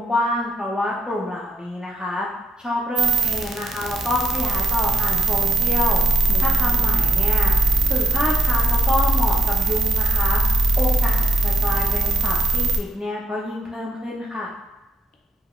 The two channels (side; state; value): both; normal; correlation 0.72